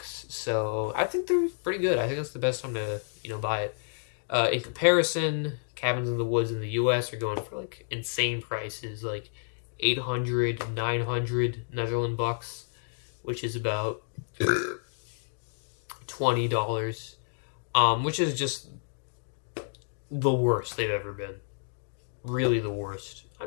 so I think they're pretty good. I think that's the best time to buy it. In comparison, cabins in the woods in the U.S. are going for like insane prices, like 800, 900 Netherlands bucks, which is about $20, which is just the worst they've ever been. Really the worst. I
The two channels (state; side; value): silent; right; digital silence